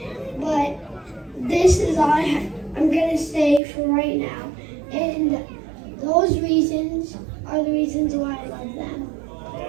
but this is all I'm gonna say for right now. And those reasons are the reasons why I love them.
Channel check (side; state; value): left; drops out; at 3.6 s